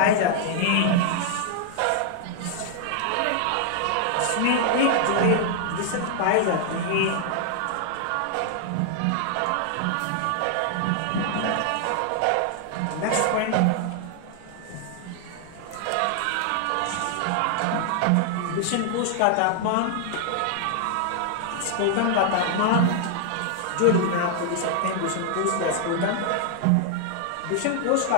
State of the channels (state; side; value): different; both; correlation 0.00